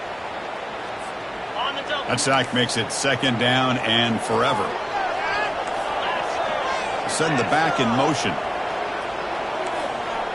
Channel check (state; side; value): identical; both; correlation 1.00